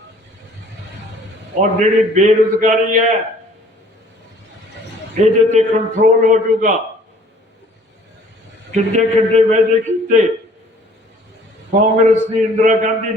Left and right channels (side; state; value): both; normal; correlation 0.55